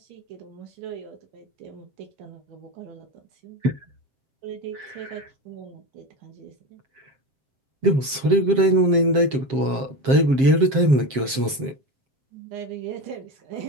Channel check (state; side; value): late; left; 7.5 ms